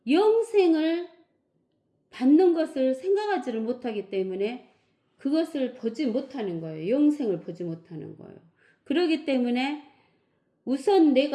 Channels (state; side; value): identical; both; correlation 1.00